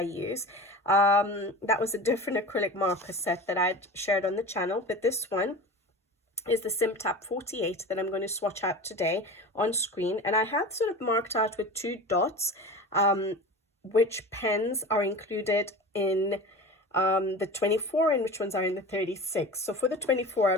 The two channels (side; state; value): both; normal; correlation 0.32